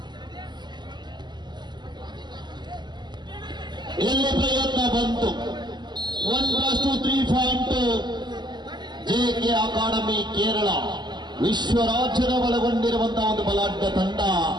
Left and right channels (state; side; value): late; left; 0.21 ms